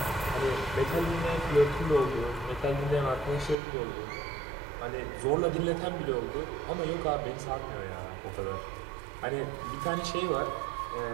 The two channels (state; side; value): drops out; left; at 3.6 s